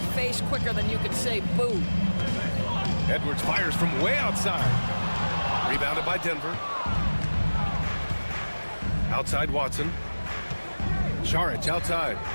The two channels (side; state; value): both; inverted; correlation -1.00